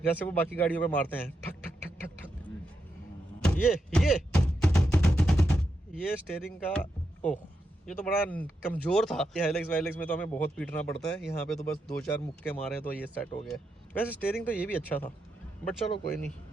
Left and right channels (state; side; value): normal; both; correlation 0.84